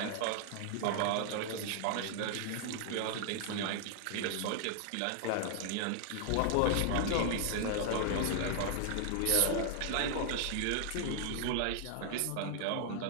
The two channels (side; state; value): both; different; correlation 0.00